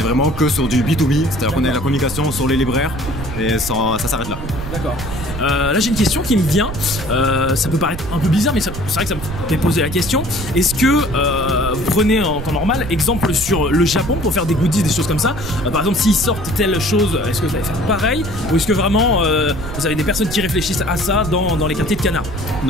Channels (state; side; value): noise; right; rumble, 9 dB below the sound